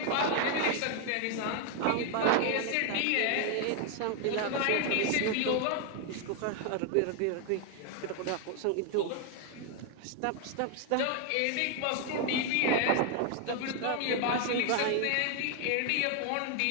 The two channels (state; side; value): different; both; correlation 0.00